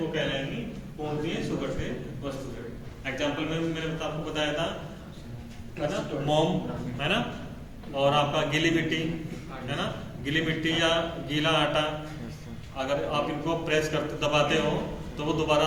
कहलाएंगी पूर्णतः सुगठ्य वस्तुएं। एग्जाम्पल में मैंने आपको बताया था है ना, मोम, है ना, और आपका गीली मिट्टी, है ना, गीली मिट्टी या गीला आटा, अगर आप इनको प्रेस करते दबाते हो तो वो दोबारा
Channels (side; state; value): both; identical; correlation 1.00